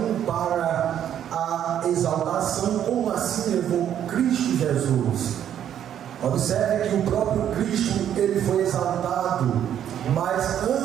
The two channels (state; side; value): quieter; left; 10.0 dB